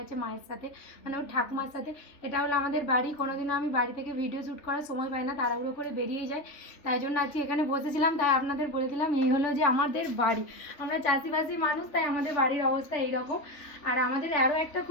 মায়ের সাথে, মানে ওর ঠাকুমার সাথে। এটা হলো আমাদের বাড়ি। কোনোদিনও আমি বাড়ি থেকে ভিডিও শ্যুট করার সময় পাই না, তাড়াহুড়ো করে বেরিয়ে যায়। তাই জন্য আজকে এখানে বসেছিলাম, তাই আপনাদের বলে দিলাম এই হলো যে আমাদের বাড়ি। আমরা চাষিবাসী মানুষ, তাই আমাদের বাড়ির অবস্থা এইরকম। আর আমাদের আরও একটা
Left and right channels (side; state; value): right; late; 3.3 ms